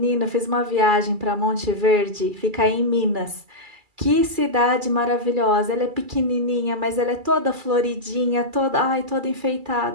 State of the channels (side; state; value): left; late; 2.3 ms